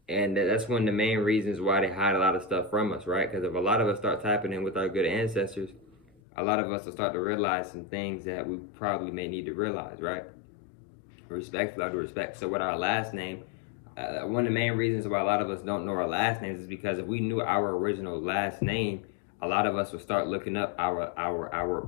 And that's one of the main reasons why they hide a lot of stuff from us, right? Because if a lot of us start tapping in with our good ancestors, a lot of us will start to realize some things that we probably may need to realize, right? Respectfully, out of respect. So with our last name, one of the main reasons why a lot of us don't know our last names is because if we knew our original last name, a lot of us will start looking up our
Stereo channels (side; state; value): right; drops out; at 6.2 s